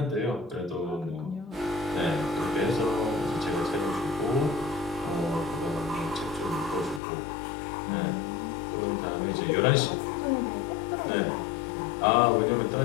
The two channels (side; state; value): right; drops out; at 7.0 s